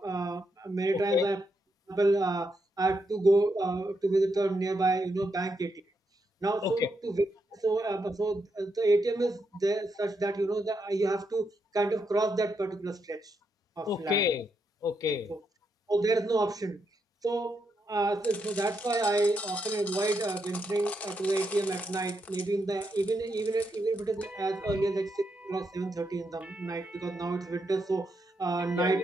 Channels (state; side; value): normal; both; correlation 0.81